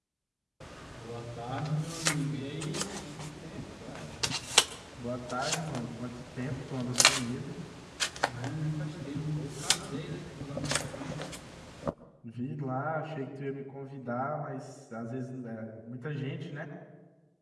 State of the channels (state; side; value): identical; both; correlation 1.00